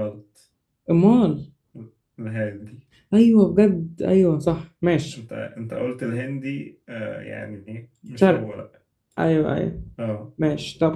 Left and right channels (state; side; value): identical; both; correlation 1.00